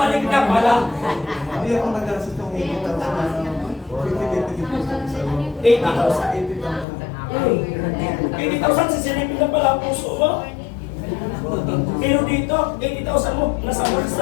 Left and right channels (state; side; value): drops out; right; at 6.9 s